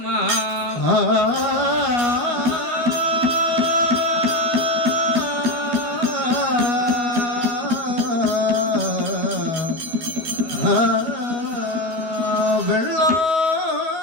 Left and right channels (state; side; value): late; left; 12 ms